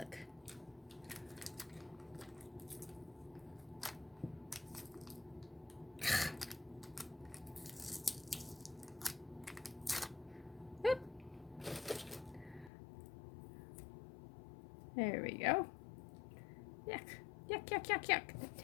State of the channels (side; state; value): right; drops out; at 12.7 s